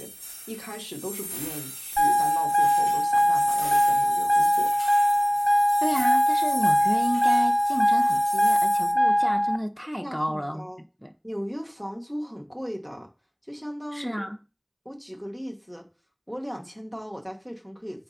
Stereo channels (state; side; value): identical; both; correlation 1.00